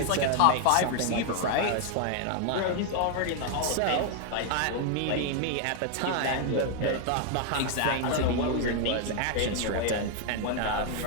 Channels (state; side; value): different; both; correlation 0.00